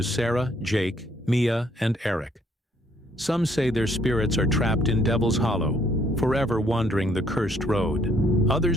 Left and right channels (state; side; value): normal; both; correlation 0.66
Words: Sarah, Jake, Mia, and Eric. Some say their spirits are trapped in Devil's Hollow, forever wandering the cursed road.